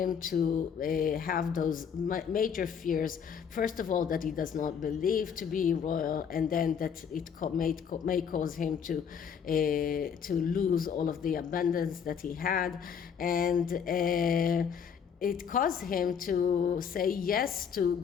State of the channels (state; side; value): quieter; right; 7.2 dB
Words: to have those major fears. First of all, that he does not believe to be royal, and then that it may cause him to lose all of the abundance that he had, and it caused him to say yes to